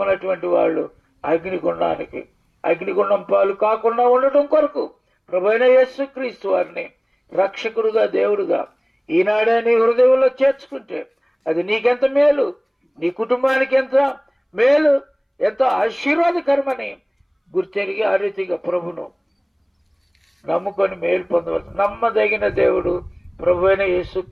వాళ్ళు అగ్నిగుండం పాలు కాకుండా ఉండటం కొరకు ప్రభువైన యేసుక్రీస్తు వారిని రక్షకుడుగా, దేవుడుగా ఈనాడే నీ హృదయంలో చేర్చుకుంటే అది నీకెంత మేలు, నీ కుటుంబానికి ఎంత మేలు, ఎంతో ఆశీర్వాదకరమని గుర్తెరిగి ఆ రీతిగా ప్రభును నమ్ముకొని మేలు పొందవచ్చు. నమ్మదగిన దేవుడు ప్రభువైన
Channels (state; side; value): identical; both; correlation 1.00